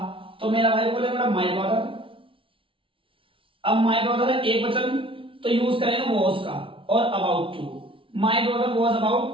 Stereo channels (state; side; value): late; left; 0.25 ms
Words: तो मेरा भाई बोले बेटा माय ब्रदर। अब माय ब्रदर है एक वचन तो यूज करेंगे वॉज का और about to. My brother was